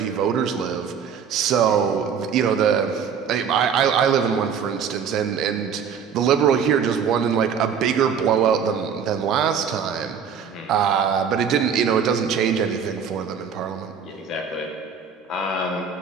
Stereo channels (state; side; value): quieter; left; 7.0 dB